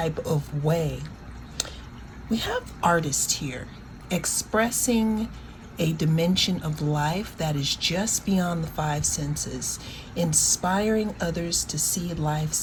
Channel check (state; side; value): identical; both; correlation 1.00